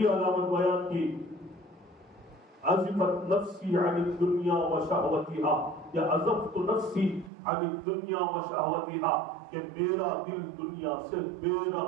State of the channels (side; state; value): left; drops out; at 7.3 s